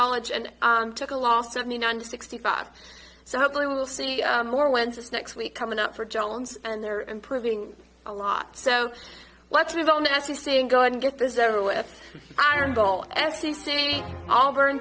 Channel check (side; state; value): both; identical; correlation 1.00